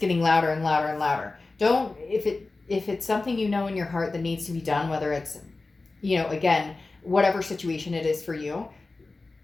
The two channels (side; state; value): right; quieter; 3.5 dB